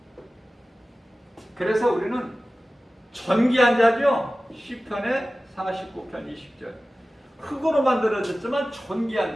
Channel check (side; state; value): both; normal; correlation 0.96